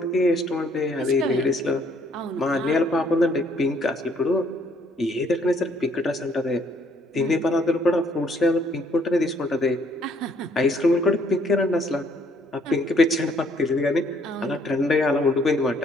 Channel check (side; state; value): both; normal; correlation 0.65